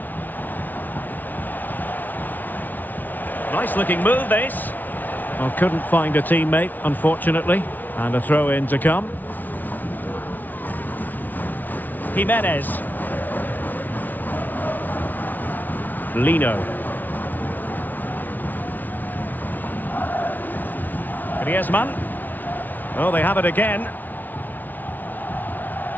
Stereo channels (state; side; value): late; right; 0.083 ms